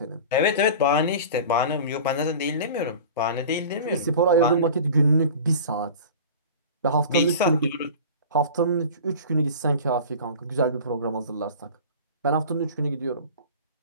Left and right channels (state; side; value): inverted; both; correlation -0.37